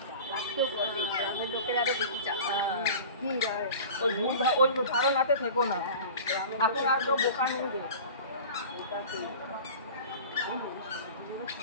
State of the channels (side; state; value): both; inverted; correlation -0.38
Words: ওই ধারণাতে থেকো না, এখন আর কেউ বোকা নেই।